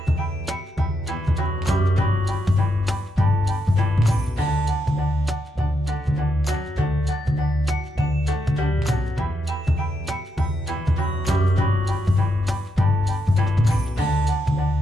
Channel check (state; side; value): normal; both; correlation 0.81